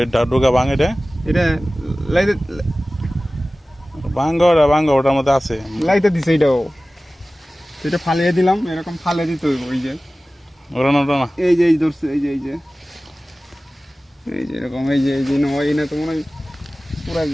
এটা ডোকা ভাঙ, এটা লাইতে ভাঙ্গা ওটার মধ্যে আছে। লাইতে দিছে এটাও, এটা ফালিয়ে দিলাম, এরকম ফালে দিতে হইব। ওই যে ওটা না এই যে ধরছে, এই যে এরকম, এই যে নয় না তো মনে হয় পুরা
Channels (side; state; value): both; normal; correlation 0.97